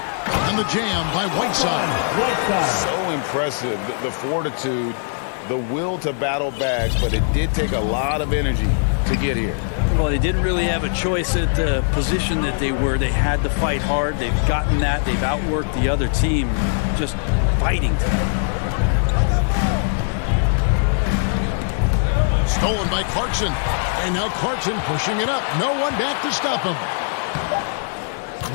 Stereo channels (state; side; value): silent; right; digital silence